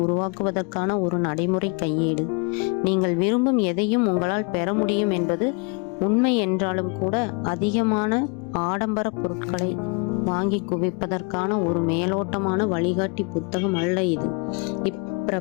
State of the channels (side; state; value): right; quieter; 32.9 dB